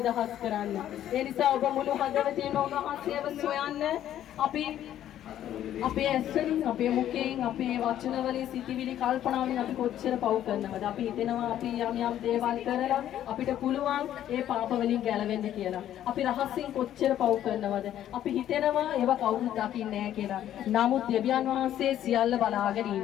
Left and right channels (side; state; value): right; quieter; 11.5 dB